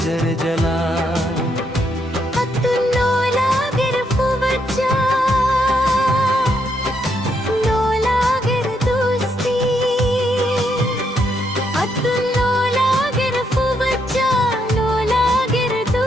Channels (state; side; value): normal; both; correlation 0.76